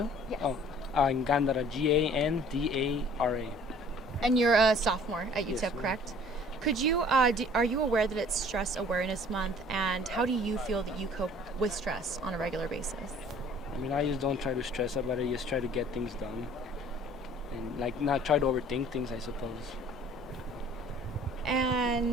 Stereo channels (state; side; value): normal; both; correlation 0.52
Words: Yes. Gandara, Gandara. And you're a sophomore at Yes, UTEP, ma'am. correct? Could you, are you aware that it's Stress Awareness Month, and how do you feel that you cope with stress on a regular basis? I mean, I just don't try to stress about it. Just try to get things done, and like not try to overthink things, I suppose.